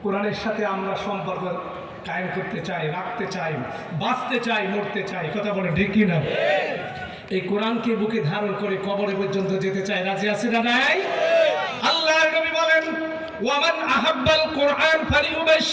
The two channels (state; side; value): identical; both; correlation 1.00